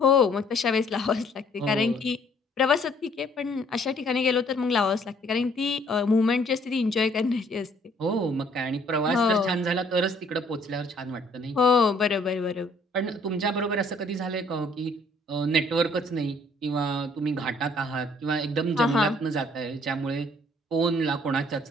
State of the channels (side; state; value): both; normal; correlation 0.61